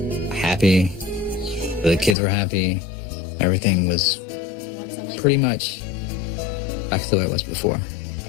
happy. The kids were happy. Everything was pretty much back to the way it was before.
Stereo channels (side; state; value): right; drops out; at 2.1 s